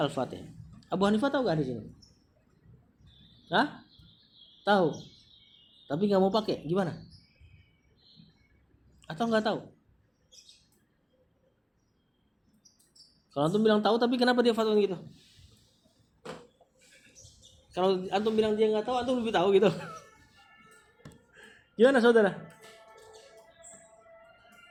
Abu Hanifah tahu gak di sini? Tahu. Tapi nggak mau pakai, gimana? Atau nggak tahu? Kalau antum bilang tahu, tapi kenapa dia fatwa gitu? Kalau antum bilang dia nggak tahu, antum lebih tahu gitu. Gimana saudara?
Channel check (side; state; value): both; identical; correlation 1.00